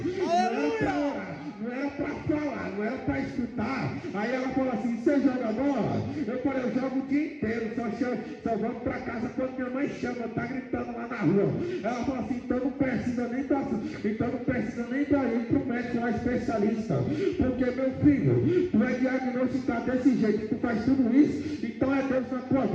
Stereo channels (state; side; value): identical; both; correlation 1.00